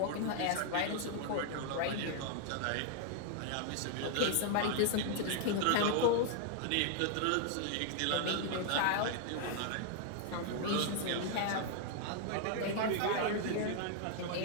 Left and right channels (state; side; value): different; both; correlation 0.00